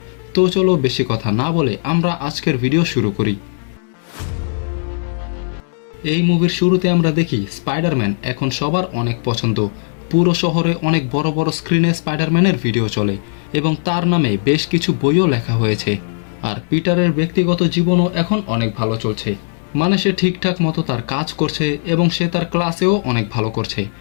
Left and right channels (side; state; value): right; silent; 67 dB below the other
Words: তো চলো বেশি কথা না বলে আমরা আজকের ভিডিও শুরু করি। এই মুভির শুরুতে আমরা দেখি স্পাইডারম্যান এখন সবার অনেক পছন্দ। পুরো শহরে অনেক বড় বড় স্ক্রিনে স্পাইডারম্যানের ভিডিও চলে এবং তার নামে বেশ কিছু বইও লেখা হয়েছে। আর পিটারের ব্যক্তিগত জীবনও এখন অনেক ভালো চলছে, মানে সে ঠিকঠাক মতো তার কাজ করছে এবং সে তার ক্লাসেও অনেক ভালো করছে।